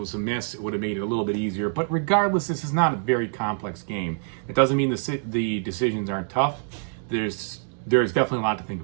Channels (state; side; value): silent; left; 57 dB below the other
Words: a miss. It would have made it a little bit easier. But regardless, this is not a very complex game. It doesn't mean the decisions aren't tough. There's definitely a lot to think